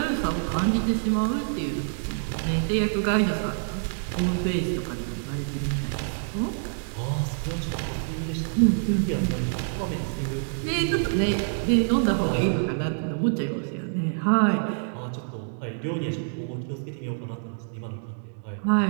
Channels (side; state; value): left; silent; digital silence